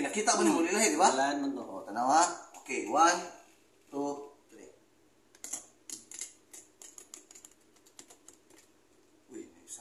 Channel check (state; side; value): identical; both; correlation 1.00